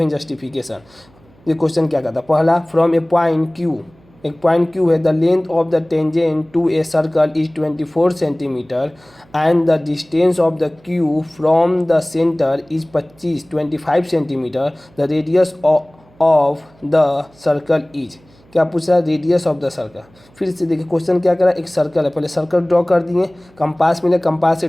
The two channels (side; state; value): right; noise; hum, 30 dB below the sound